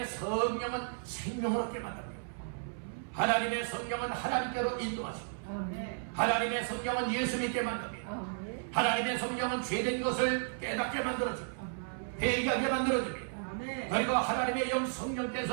성령은 생명을 얻게 만듭니다. 하나님의 성령은 하나님께로 인도하시고 하나님의 성령은 예수 믿게 만듭니다. 하나님의 성령은 죄된 것을 깨닫게 만들어줍니다. 회개하게 만들어줍니다. 그리고 하나님의 영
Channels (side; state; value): left; silent; 55 dB below the other